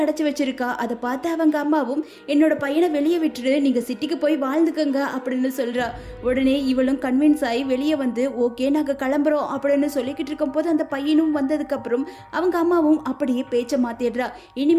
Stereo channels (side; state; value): both; identical; correlation 1.00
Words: அடைச்சு வச்சிருக்கா. அதை பார்த்து அவங்க அம்மாவும் என்னோட பையனை வெளியே விட்டுட்டு நீங்க சிட்டிக்கு போய் வாழ்ந்துக்கங்க அப்படின்னு சொல்றா. உடனே இவளும் கன்வின்ஸ் ஆகி வெளியே வந்து ஓகே நாங்கள் கிளம்புறோம் அப்படின்னு சொல்லிக்கிட்டு இருக்கும் போது அந்த பையனும் வந்ததுக்கு அப்புறம் அவங்க அம்மாவும் அப்படியே பேச்சை மாத்திடுறா.